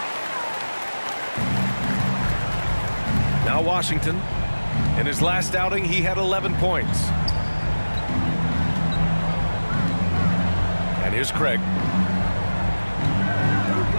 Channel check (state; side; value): inverted; both; correlation -1.00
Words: Now Washington. In his last outing, he had 11 points. And here's Craig.